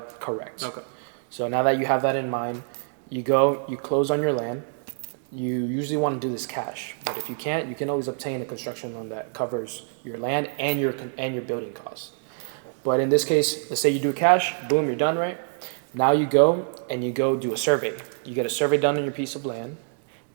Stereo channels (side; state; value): left; silent; 61 dB below the other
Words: Correct. Okay. So now that you have that in mind, you close on your land. You usually want to do this cash, but if you can't, you can always obtain a construction loan that covers your land and your building costs. But in this case, let's say you do cash, boom, you're done, right? Now you go do a survey. You get a survey done on your piece of land,